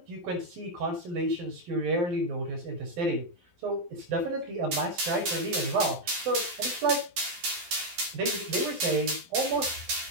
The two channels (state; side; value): late; left; 11 ms